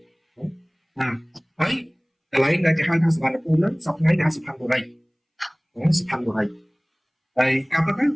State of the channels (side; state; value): both; identical; correlation 1.00